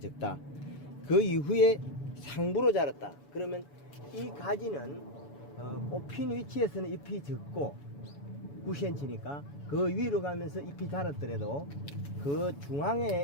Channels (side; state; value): right; late; 7.0 ms